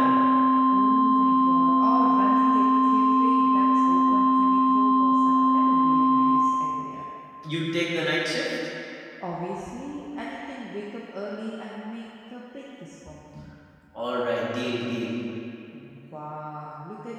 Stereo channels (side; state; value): both; identical; correlation 1.00